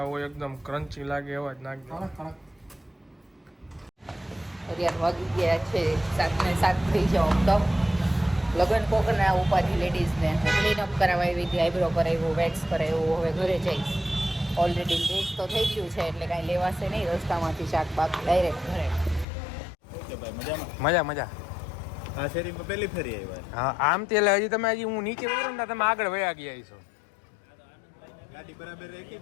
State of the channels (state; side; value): drops out; right; at 19.2 s